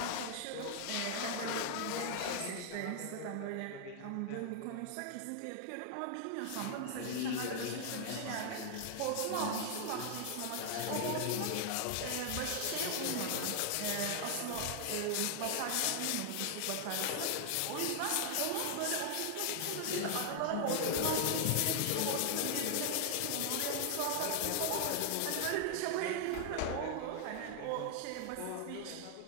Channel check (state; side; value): different; both; correlation 0.00